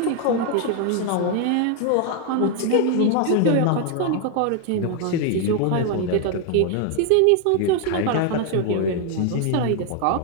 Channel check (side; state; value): both; different; correlation 0.01